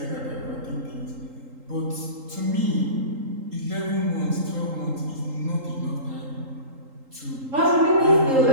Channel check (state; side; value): late; left; 3.8 ms